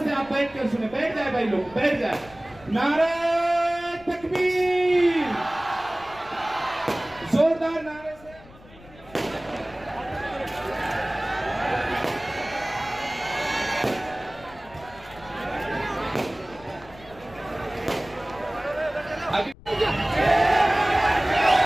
से आप बैठ कर सुने, बैठ जाए भाई लोग, बैठ जाए। नारे तकबीर, जोरदार नारे से।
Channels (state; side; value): noise; left; rumble, 22 dB below the sound